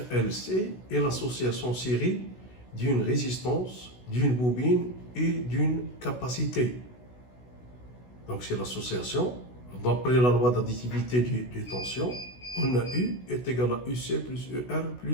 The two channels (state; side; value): late; right; 16 ms